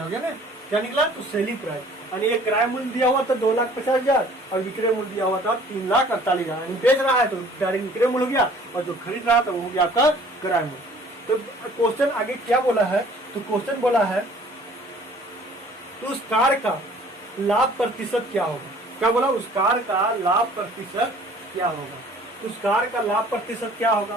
गया ना। क्या निकला? तो सेलिंग प्राइस यानी ये क्रय मूल्य दिया हुआ था 2,50,000 और विक्रय मूल्य दिया हुआ था 3,48,000। यानी बेच रहा है तो डायरेक्ट विक्रय मूल्य हो गया और जो खरीद रहा था वो हो गया आपका क्रय मूल्य। तो क्वेश्चन आगे क्या बोला है? तो क्वेश्चन बोला है तो उस कार का लाभ प्रतिशत क्या होगा? क्या बोला? उस कार का लाभ प्रतिशत क्या होगा? उस कार का लाभ प्रतिशत क्या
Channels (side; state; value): both; normal; correlation 0.53